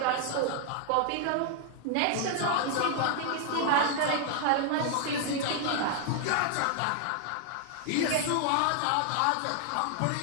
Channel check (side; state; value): both; different; correlation 0.00